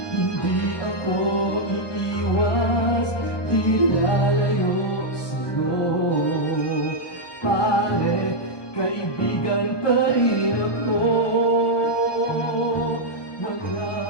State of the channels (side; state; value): right; late; 1.2 ms